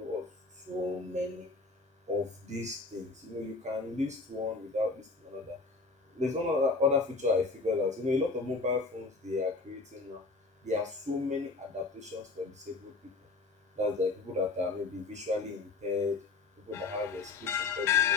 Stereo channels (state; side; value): quieter; right; 3.9 dB